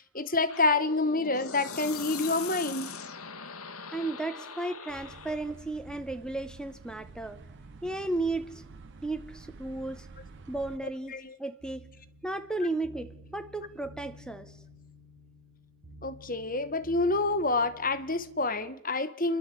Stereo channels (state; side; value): normal; both; correlation 0.11